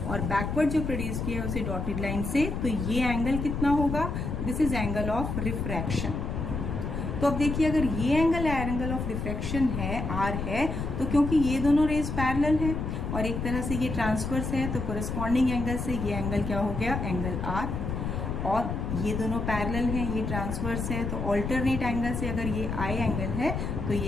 और बैकवर्ड जो प्रोड्यूस किया है उसे डॉटेड लाइन से. तो ये एंगल कितना होगा? This is angle of refraction. तो अब देखिए, अगर ये एंगल ऑफ रिफ्रैक्शन है, R है, तो क्योंकि ये दोनों रेज पैरेलल है और एक तरह से ये ट्रांसवर्स है, तो कोरेस्पॉन्डिंग एंगल से ये एंगल क्या हो गया? Angle R. और ये दोनों पैरेलल हैं, ये ट्रांसवर्स है, तो ऑल्टरनेट एंगल से अगर ये I एंगल है तो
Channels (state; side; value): noise; left; rumble, 3 dB below the sound